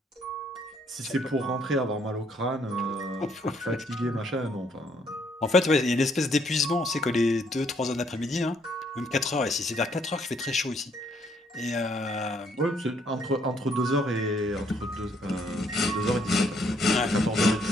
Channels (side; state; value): both; normal; correlation 0.68